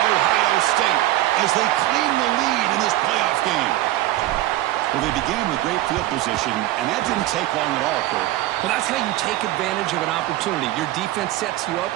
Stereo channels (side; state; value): left; quieter; 15.7 dB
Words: Ohio State, as they claim the lead in this playoff game. Well, they began with great field position, and that didn't take long at all, Kurt. Well, that's how you take advantage of an opportunity. Your defense sets you up